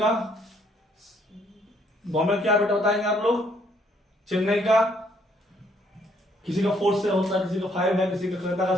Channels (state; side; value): normal; both; correlation 0.67